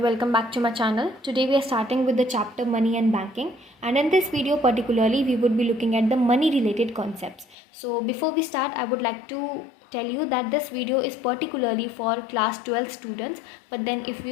welcome back to my channel. Today we are starting with the chapter Money and Banking, and in this video particularly we would be looking at the money related concepts. So before we start, I would like to tell you that this video is particularly for class 12 students, but then if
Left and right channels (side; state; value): right; drops out; at 7.6 s